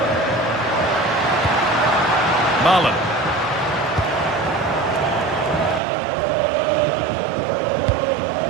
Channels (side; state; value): left; drops out; at 5.8 s